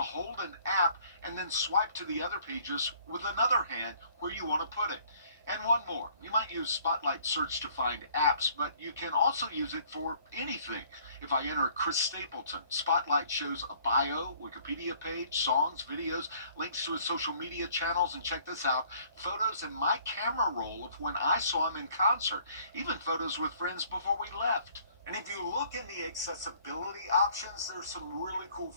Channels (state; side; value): inverted; both; correlation -0.58